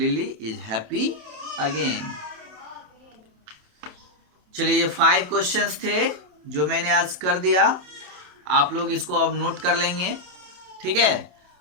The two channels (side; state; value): left; late; 28 ms